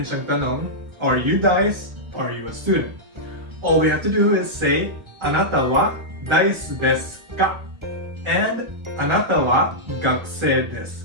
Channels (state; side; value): late; left; 1.5 ms